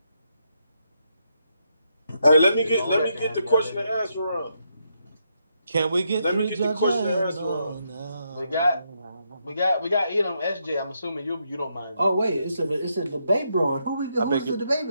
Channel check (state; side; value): inverted; both; correlation -0.79